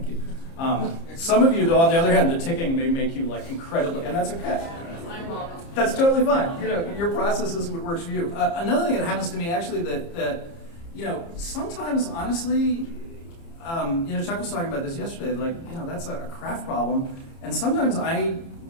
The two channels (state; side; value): late; right; 30 ms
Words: you. Some of you, though, on the other hand, the ticking may make you like incredibly, and that's okay. That's totally fine. You know, your process is what works for you. Another thing that happens to me actually that you know, sometimes honestly, you know, Chuck was talking about this yesterday. Like, you know, that's a craft problem, and sometimes I